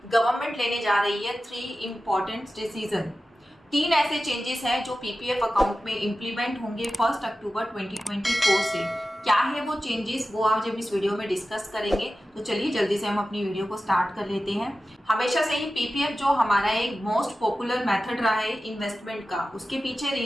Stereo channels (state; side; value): normal; both; correlation 0.94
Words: गवर्नमेंट लेने जा रही है 3 इम्पॉर्टेंट डिसीजन। 3 ऐसे चेंजेस हैं जो पीपीएफ अकाउंट में इम्प्लीमेंट होंगे 1 अक्टूबर 2024 से। क्या है वो चेंजेस, वो आज हम इस वीडियो में डिस्कस करेंगे। तो चलिए जल्दी से हम अपनी वीडियो को स्टार्ट कर लेते हैं। हमेशा से ही पीपीएफ जो हमारा एक मोस्ट पॉपुलर मेथड रहा है इन्वेस्टमेंट का, उसके पीछे